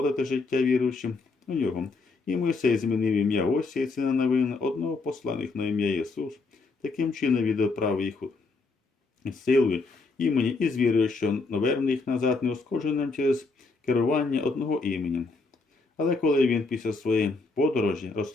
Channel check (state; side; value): quieter; right; 3.9 dB